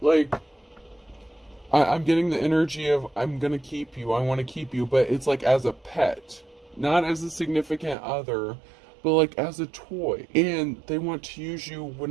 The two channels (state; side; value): drops out; left; at 8.0 s